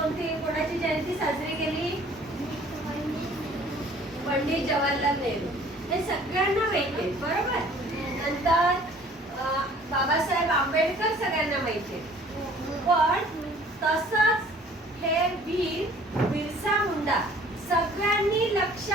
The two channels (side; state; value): both; normal; correlation 0.53